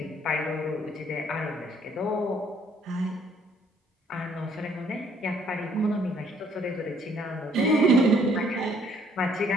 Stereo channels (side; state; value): both; normal; correlation 0.63